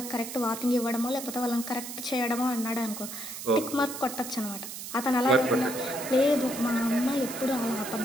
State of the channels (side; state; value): right; noise; hiss, 9 dB below the sound